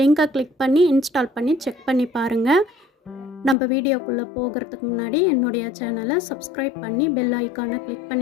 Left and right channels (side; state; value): right; drops out; at 3.6 s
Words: கிளிக் பண்ணி இன்ஸ்டால் பண்ணி செக் பண்ணி பாருங்கள். நம்ம வீடியோக்குள்ளே போகிறதுக்கு முன்னாடி என்னுடைய சேனலை சப்ஸ்கிரைப் பண்ணி பெல் ஐக்கானை கிளிக்